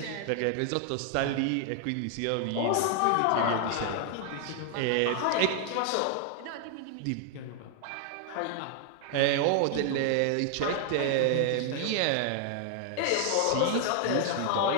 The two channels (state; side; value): different; both; correlation 0.00